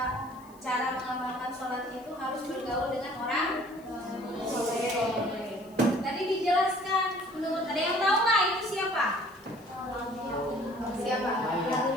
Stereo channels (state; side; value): noise; left; hiss, 27 dB below the sound